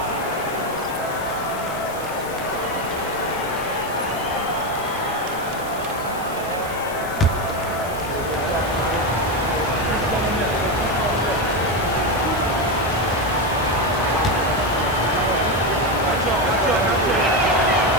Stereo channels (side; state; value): left; noise; hiss, 15 dB below the sound